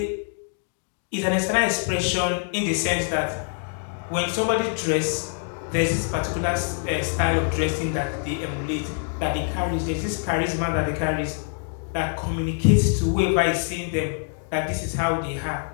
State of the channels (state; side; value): silent; right; 62 dB below the other